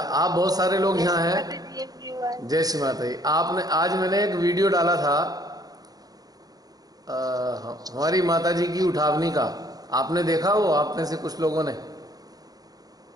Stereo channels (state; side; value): late; left; 0.18 ms